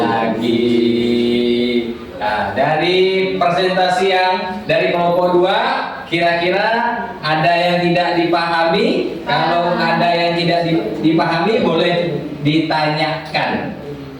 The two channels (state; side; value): identical; both; correlation 1.00